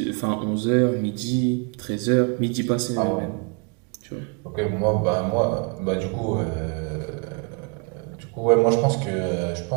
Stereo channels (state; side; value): quieter; left; 32.6 dB